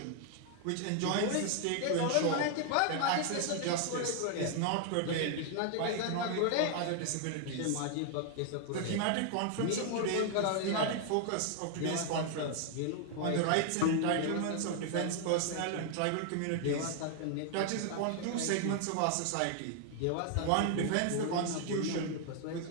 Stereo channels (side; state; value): both; different; correlation 0.00